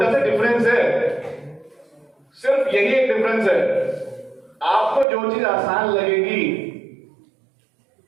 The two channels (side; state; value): left; drops out; at 5.1 s